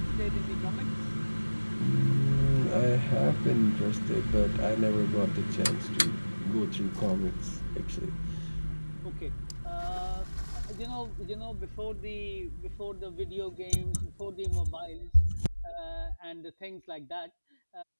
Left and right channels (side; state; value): both; inverted; correlation -1.00